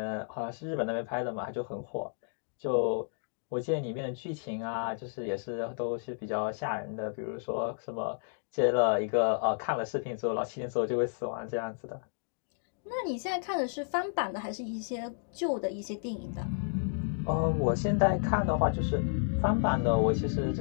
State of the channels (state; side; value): silent; right; digital silence